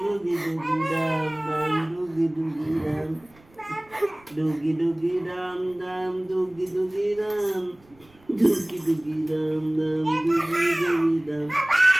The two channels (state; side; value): noise; right; rumble, 28 dB below the sound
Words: ডুগি ডাম ডাম ডুগি ডুগি ডাম ডুগি ডুগি ডাম ডাম ডুগি ডুগি ডাম ডুগি ডুগি ডাম ডাম ডুগি ডুগি ডাম